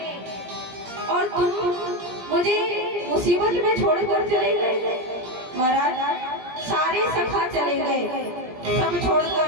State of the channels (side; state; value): left; late; 17 ms